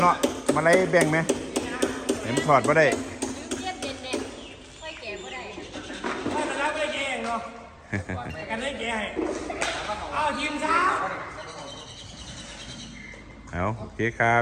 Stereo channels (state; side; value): identical; both; correlation 1.00